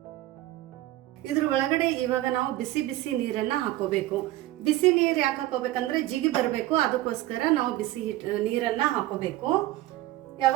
ಇದ್ರ ಒಳಗಡೆ ಇವಾಗ ನಾವು ಬಿಸಿ ಬಿಸಿ ನೀರನ್ನ ಹಾಕೋಬೇಕು. ಬಿಸಿ ನೀರು ಯಾಕೆ ಹಾಕೋಬೇಕಂದ್ರೆ ಜಿಗಿ ಬರಬೇಕು, ಅದಕ್ಕೋಸ್ಕರ ನಾವು ಬಿಸಿ ನೀರನ್ನ ಹಾಕೋಬೇಕು.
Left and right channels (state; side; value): quieter; left; 16.1 dB